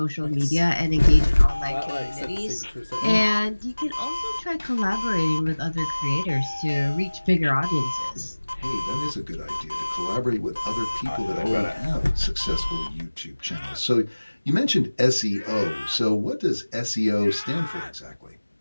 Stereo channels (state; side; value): inverted; both; correlation -1.00